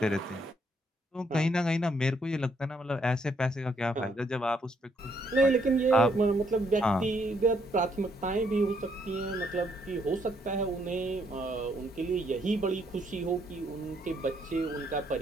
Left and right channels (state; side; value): normal; both; correlation 0.72